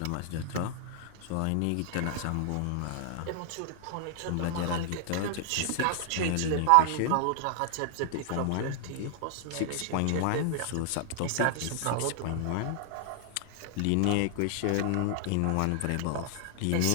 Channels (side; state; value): both; different; correlation 0.00